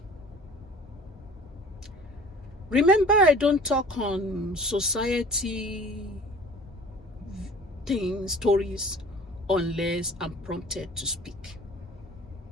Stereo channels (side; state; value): both; normal; correlation 0.45